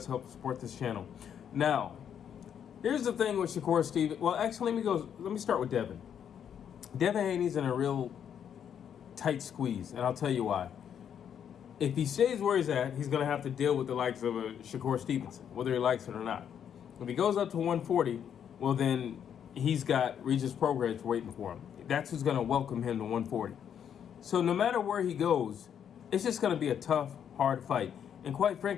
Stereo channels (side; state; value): right; quieter; 8.6 dB